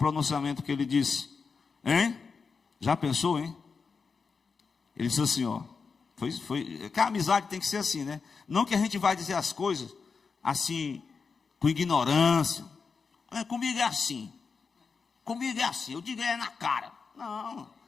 que ele disse? Hein? Já pensou, hein? Ele disse assim, que a amizade tem que ser assim, né? Não que a gente vai dizer as coisas assim, com ignorância. Comigo é assim, eu digo na cara. Não,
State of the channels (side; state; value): right; quieter; 5.2 dB